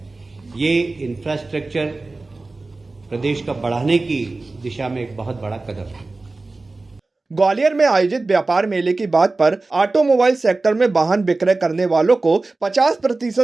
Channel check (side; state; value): left; quieter; 3.4 dB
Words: ये इंफ्रास्ट्रक्चर प्रदेश का बढ़ाने की दिशा में एक बहुत बड़ा कदम है। ग्वालियर में आयोजित व्यापार मेले की बात पर ऑटोमोबाइल सेक्टर में वाहन विक्रय करने वालों को